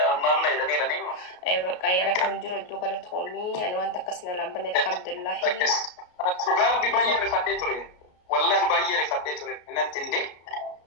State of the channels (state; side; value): late; right; 33 ms